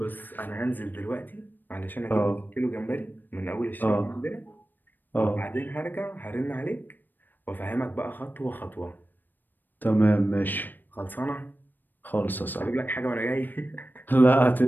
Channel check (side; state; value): right; late; 0.091 ms